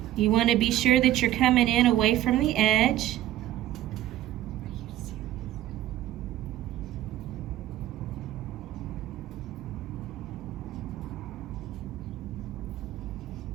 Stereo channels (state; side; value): quieter; left; 13.5 dB